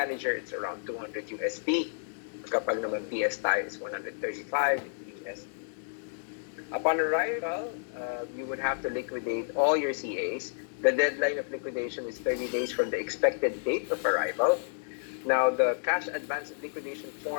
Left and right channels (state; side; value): silent; right; digital silence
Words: it's around 200 USD. Kapag naman PS tayo is 135 USD. Upon arrival, you would have to liquidate all your CAs. The deadline of liquidation is 30 days from the expected date of arrival. Now, the cash advance liquidation